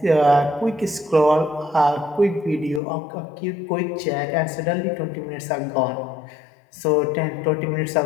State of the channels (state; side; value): drops out; right; at 2.8 s